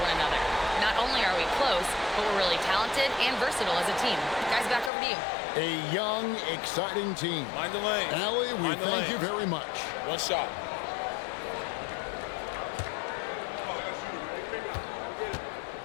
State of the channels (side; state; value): right; drops out; at 4.9 s